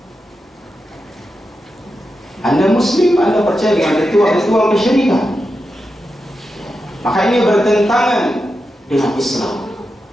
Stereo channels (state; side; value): normal; both; correlation 0.89